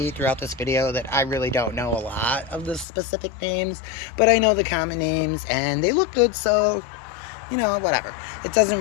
throughout this video that I really don't know a lot of the specific names. But I know the common names, and they look good, so, you know, whatever. It doesn't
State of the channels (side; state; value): right; drops out; at 2.9 s